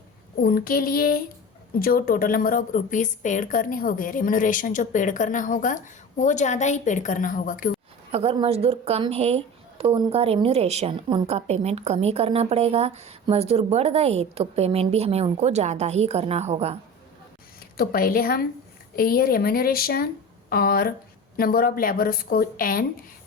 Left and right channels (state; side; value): normal; both; correlation 0.32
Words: उनके लिए जो total number of rupees paid करने होंगे, रेम्यूनरेशन जो पेड करना होगा वो ज़्यादा ही पेड करना होगा। क्यों, अगर मजदूर कम है तो उनका रेम्यूनरेशन, उनका पेमेंट कम ही करना पड़ेगा। मजदूर बढ़ गए तो पेमेंट भी हमें उनको ज़्यादा ही करना होगा। तो पहले हम ये रेम्यूनरेशन और नंबर ऑफ लेबर्स को एन